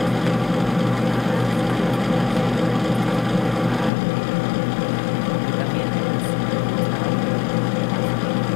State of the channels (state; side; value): drops out; right; at 3.9 s